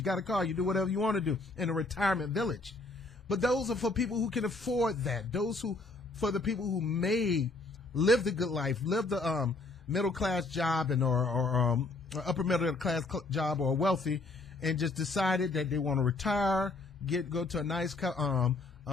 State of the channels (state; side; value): quieter; right; 3.3 dB